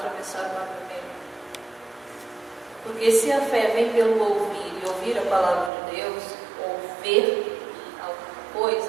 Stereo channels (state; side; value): drops out; left; at 5.7 s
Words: o mar vermelho. Porque se a fé vem pelo ouvir e ouvir a palavra de Deus, ou ver alguma